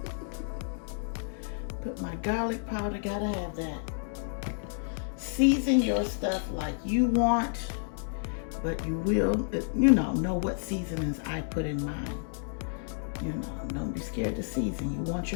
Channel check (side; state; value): right; silent; digital silence